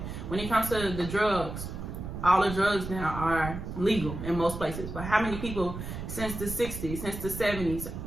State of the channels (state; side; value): noise; right; rumble, 7 dB below the sound